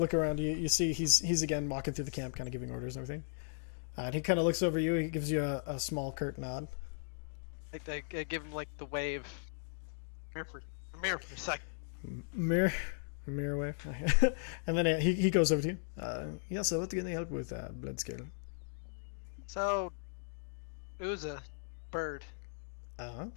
around, you see he's again walking through the camp, kind of giving orders and everything. And he kind of looks over you. He gives you a small curt nod. I give him like the wave. Come here for a sec. Mirror wave. And then he goes over to you. Yeah, so what can I help with, Bloodscale? So, Uza, bird, Uh-huh.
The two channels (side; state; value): right; silent; digital silence